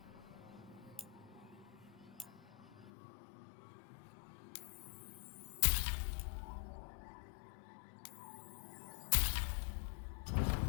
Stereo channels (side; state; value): right; drops out; at 2.9 s